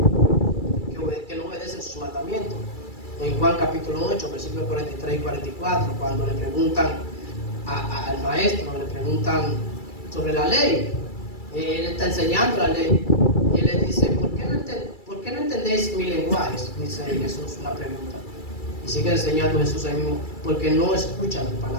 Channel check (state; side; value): late; right; 2.3 ms